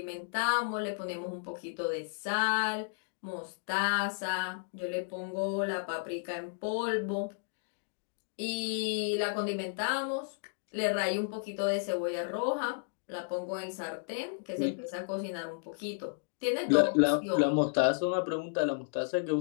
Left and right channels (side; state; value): right; silent; digital silence